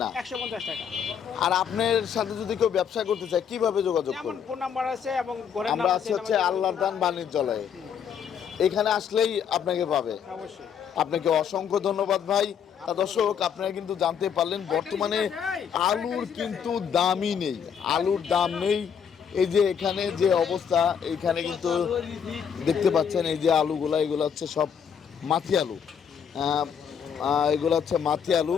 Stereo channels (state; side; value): quieter; right; 7.6 dB